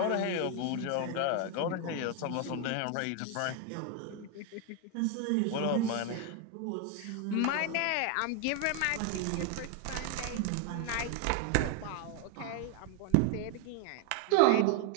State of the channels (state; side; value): different; both; correlation 0.01